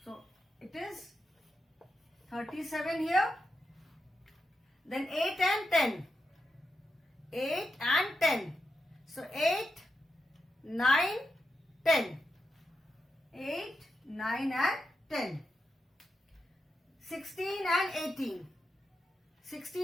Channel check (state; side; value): normal; both; correlation 0.87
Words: So it is 37 here. Then 8 and 10. 8 and 10. So 8, 9, 10. 8, 9 and 10. 16 and 18.